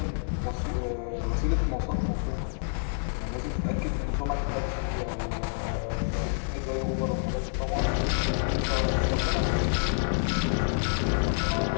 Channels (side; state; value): right; silent; 59 dB below the other